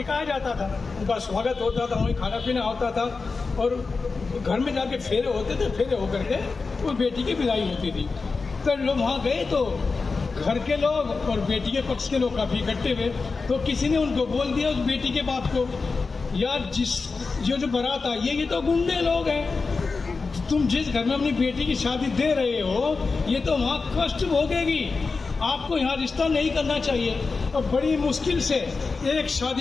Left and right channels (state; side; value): quieter; right; 4.3 dB